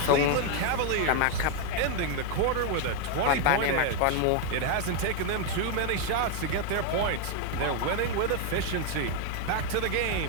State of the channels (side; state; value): both; different; correlation 0.01